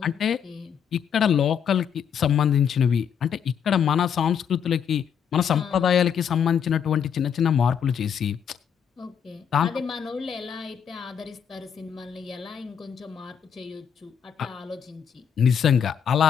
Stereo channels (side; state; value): right; quieter; 7.9 dB